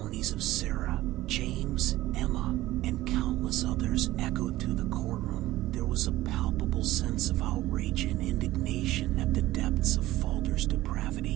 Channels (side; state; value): left; quieter; 16.4 dB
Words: of Sarah, James, Emma, and countless others echoed through the courtroom, there was a palpable sense of outrage and indignation at the depths of Falder's